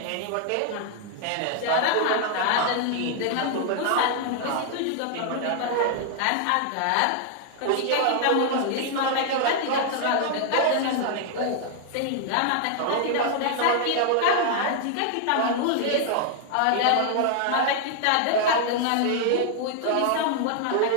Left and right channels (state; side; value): different; both; correlation 0.00